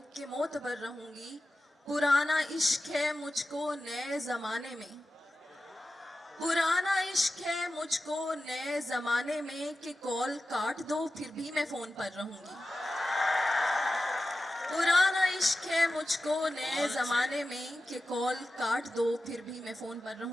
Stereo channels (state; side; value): normal; both; correlation 0.93